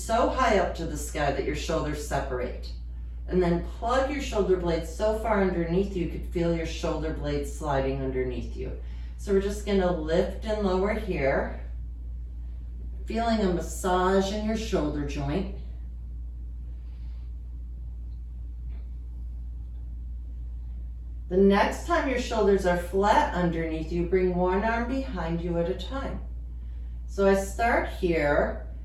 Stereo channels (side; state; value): both; identical; correlation 1.00